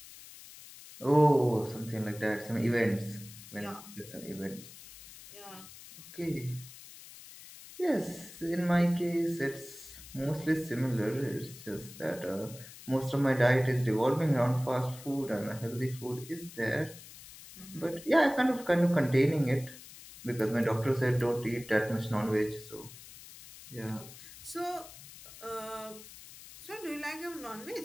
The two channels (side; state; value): left; noise; hiss, 17 dB below the sound